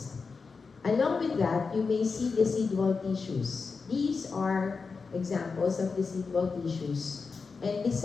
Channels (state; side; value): quieter; right; 4.8 dB